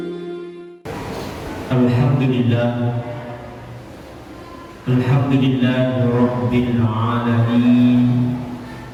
Alhamdulillah Rabbil Alamin.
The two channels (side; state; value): both; identical; correlation 1.00